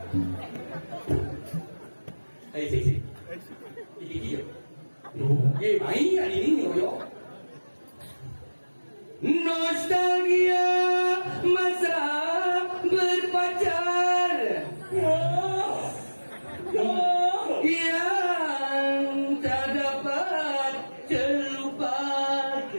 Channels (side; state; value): both; inverted; correlation -1.00